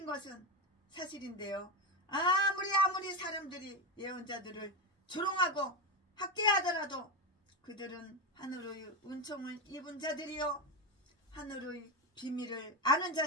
것은 사실인데요. 아무리 사람들이 예언자들을 조롱하고 학대하더라도 그들은 하늘의 은총을 입은 자들이요 하늘의 비밀을 아는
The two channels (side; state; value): both; normal; correlation 0.14